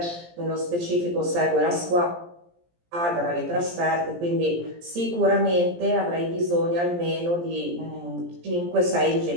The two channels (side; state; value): left; late; 17 ms